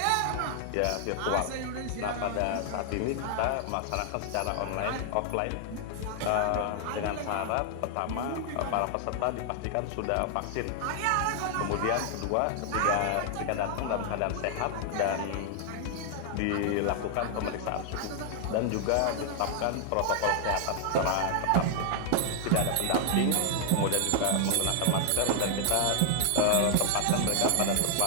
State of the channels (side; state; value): both; different; correlation 0.00